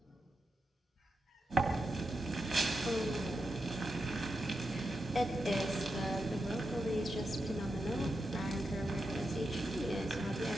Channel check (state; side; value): normal; both; correlation 0.87